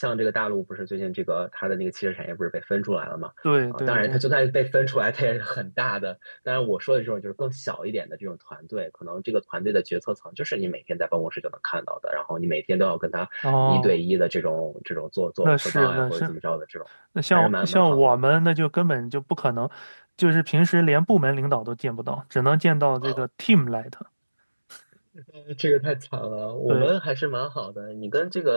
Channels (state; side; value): inverted; both; correlation -1.00